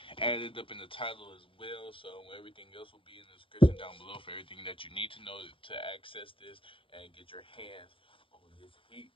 added up in the title as well, so everything else will be in the description down below for everything that you need to know to access this and get your hands on this heat,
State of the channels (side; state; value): right; late; 0.25 ms